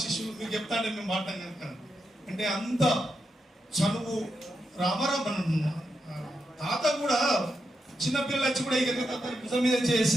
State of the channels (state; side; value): normal; both; correlation 0.85